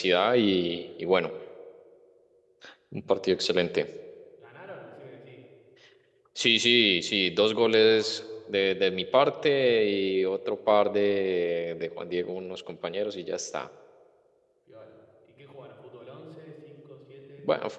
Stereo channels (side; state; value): both; identical; correlation 1.00